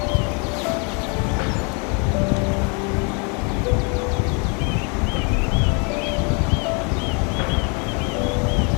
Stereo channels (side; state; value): right; quieter; 34.6 dB